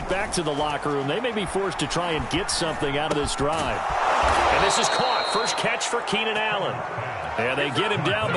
back to the locker room, they may be forced to try and get something out of this drive. And this is caught. First catch for Keenan Allen. And they get him down,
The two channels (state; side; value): identical; both; correlation 1.00